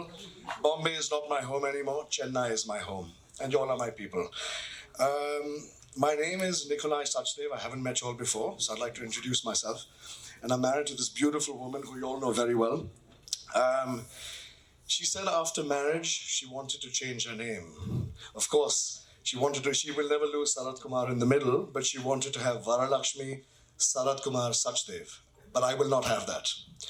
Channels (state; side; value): identical; both; correlation 1.00